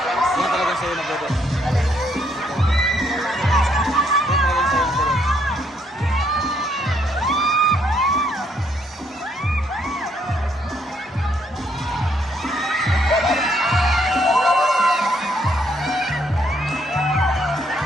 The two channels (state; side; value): normal; both; correlation 0.71